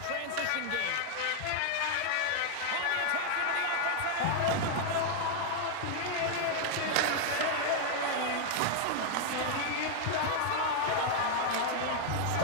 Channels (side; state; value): both; different; correlation 0.00